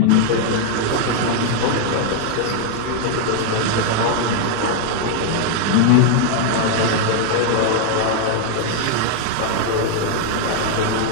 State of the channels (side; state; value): both; different; correlation 0.00